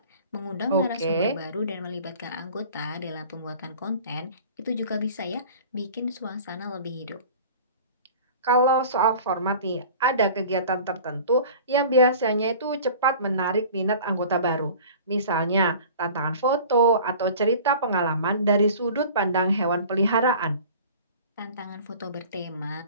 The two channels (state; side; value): inverted; both; correlation -0.43